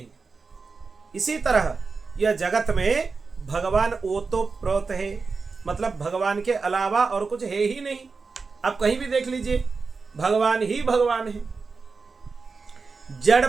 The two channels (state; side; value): quieter; left; 4.6 dB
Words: इसी तरह यह जगत में भगवान ओतप्रोत है, मतलब भगवान के अलावा और कुछ है ही नहीं। आप कहीं भी देख लीजिए, भगवान ही भगवान है। जड़